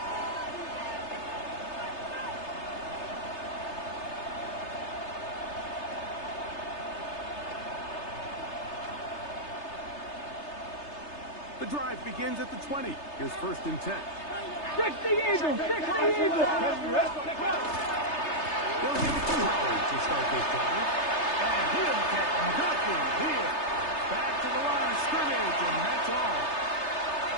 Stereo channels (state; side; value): late; right; 3.3 ms